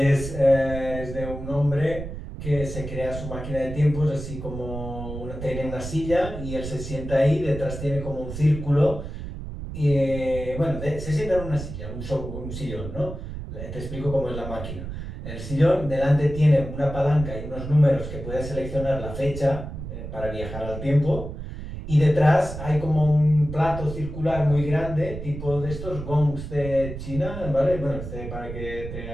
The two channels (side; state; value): right; noise; rumble, 9 dB below the sound